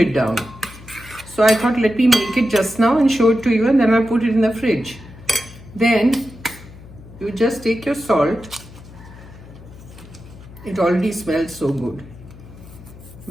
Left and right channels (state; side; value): noise; left; hum, 18 dB below the sound